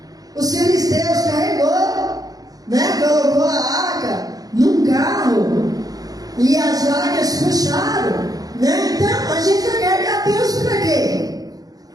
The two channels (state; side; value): late; left; 0.18 ms